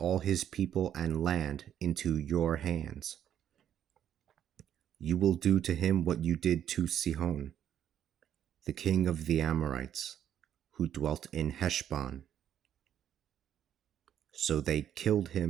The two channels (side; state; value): left; quieter; 10.1 dB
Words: his people and land into your hands. You will do to him what you did to Sihon, the king of the Amorites, who dwelt in Heshbon. So they killed